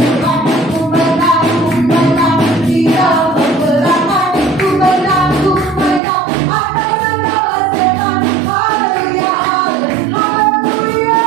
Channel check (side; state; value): left; drops out; at 6.0 s